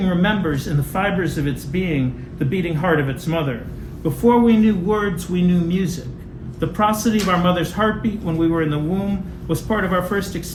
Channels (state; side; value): identical; both; correlation 1.00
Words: remembers in the fibers of its being the beating heart of its mother. Before we knew words, we knew music. The prosody of our mother's heartbeat when we were in the womb was part of our first